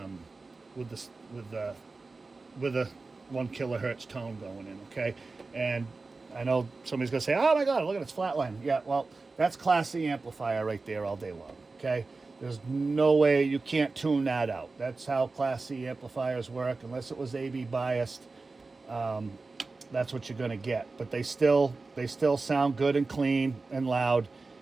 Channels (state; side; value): quieter; left; 3.8 dB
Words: with the 1 kilohertz tone going in, okay? And I know somebody's gonna say, oh my God, look at it's flatline. Yeah, well, that's Class C amplifier right there all day long, okay? There's no way you can't tune that out. That's how Class C amplifiers work. Unless it was AB biased, that's what you're gonna get. But they still sound good and clean and loud,